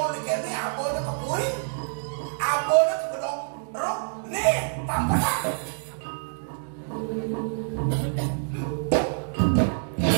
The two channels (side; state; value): left; silent; digital silence